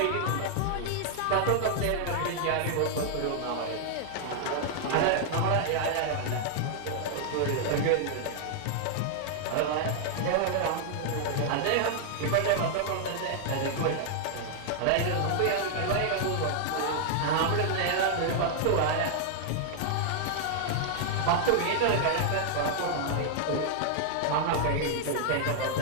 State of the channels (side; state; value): both; different; correlation 0.00